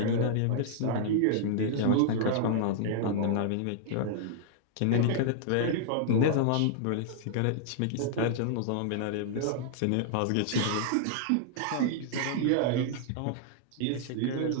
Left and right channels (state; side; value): different; both; correlation -0.01